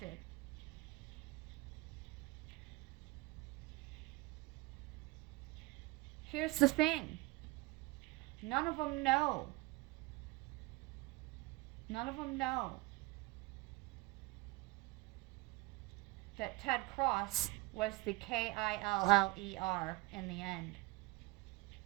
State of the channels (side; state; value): left; quieter; 23.1 dB